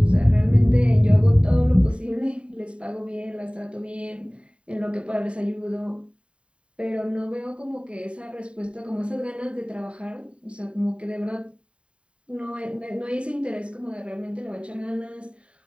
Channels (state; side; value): late; left; 0.058 ms